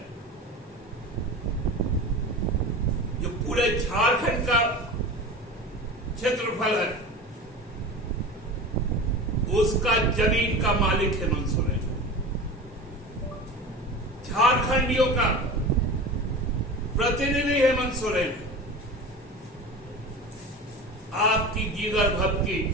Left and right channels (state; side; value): normal; both; correlation 0.31